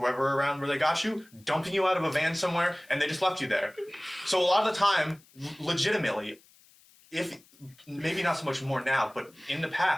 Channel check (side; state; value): left; noise; hiss, 28 dB below the sound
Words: around where they got you, dumping you out of a van somewhere, and they just left you there. So a lot of the time, legitimately, if maybe not so much more now, but in the